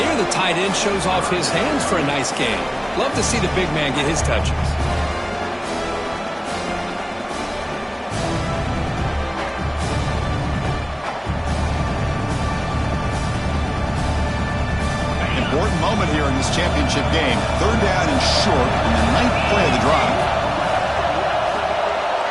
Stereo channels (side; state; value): both; identical; correlation 1.00